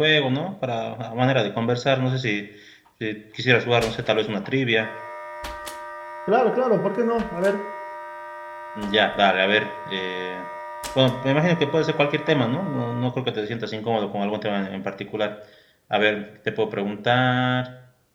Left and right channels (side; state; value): both; identical; correlation 1.00